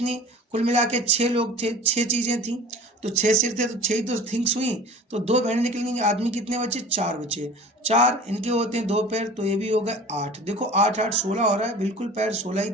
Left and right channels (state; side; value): normal; both; correlation 0.41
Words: कुल मिला के 6 लोग थे, 6 चीज़ें थी, तो 6 सिर थे तो 6 ही तो थिंग्स हुई। तो 2 भेड़ें निकलेंगी, आदमी कितने बचे? 4 बचे। 4 इनके होते हैं 2 पैर, तो ये भी हो गए 8। देखो 8 8 16 हो रहा है, बिल्कुल पैर 16 ही